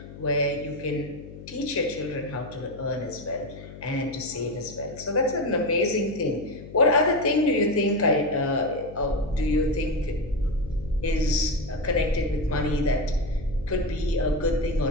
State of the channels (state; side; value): noise; left; hum, 15 dB below the sound